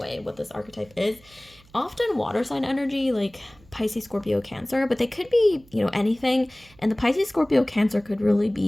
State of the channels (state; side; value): noise; right; hum, 27 dB below the sound